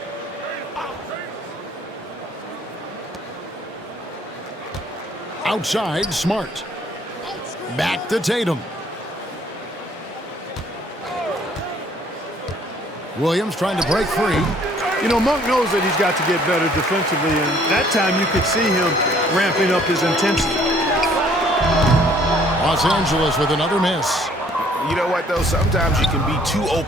Outside, Smart. Back to Tatum. Williams trying to break free. You know, Monk knows that he's got to get better defensively, and that time you could see him ramping up his intensity. Los Angeles with another miss. You know what, though? Sometimes you can be too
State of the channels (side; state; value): both; normal; correlation 0.60